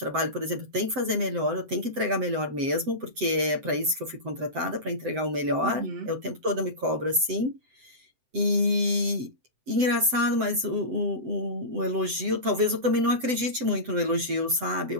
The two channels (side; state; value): left; late; 7.8 ms